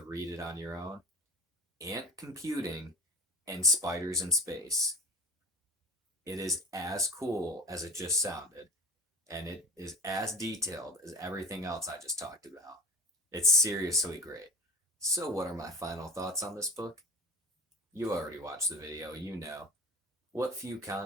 read it on your own. Ant computing and spiders in space. It is as cool as it just sounded, and it is as detailed as everything else I just talked about. It's seriously great. So, what are my final thoughts on this book? You already watched the video, you know. What few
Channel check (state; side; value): normal; both; correlation 0.34